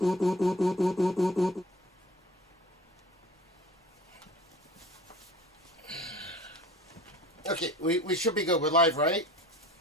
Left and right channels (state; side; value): normal; both; correlation 0.44